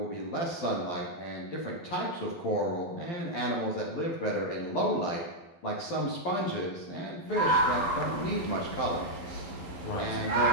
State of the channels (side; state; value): right; late; 12 ms